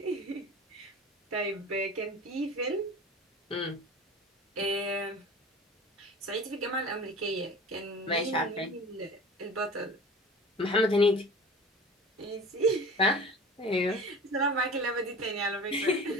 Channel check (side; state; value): both; normal; correlation 0.38